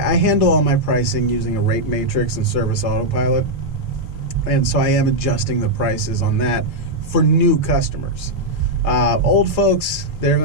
handle all my pricing using a rate matrix and Service Autopilot. And so I am adjusting the prices on that for new customers. Old folks, they're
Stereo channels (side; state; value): right; late; 3.4 ms